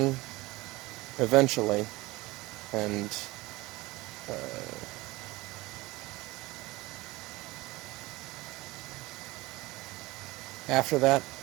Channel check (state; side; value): quieter; left; 20.7 dB